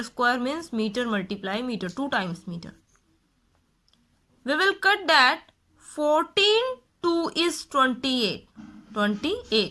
square means metre multiply metre, 2 times metre. We will cut that 14 2 is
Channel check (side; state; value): both; identical; correlation 1.00